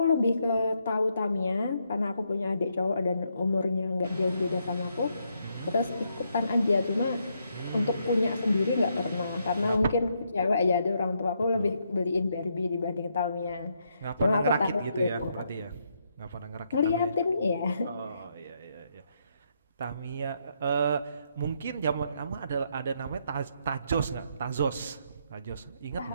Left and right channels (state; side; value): inverted; both; correlation -0.77